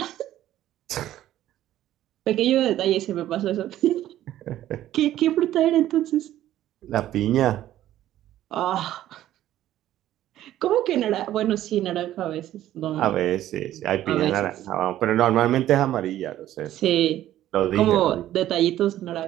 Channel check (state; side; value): quieter; left; 13.1 dB